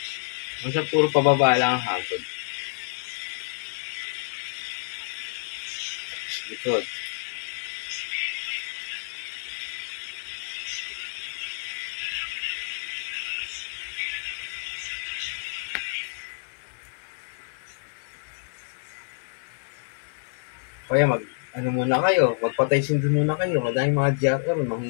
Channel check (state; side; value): silent; right; digital silence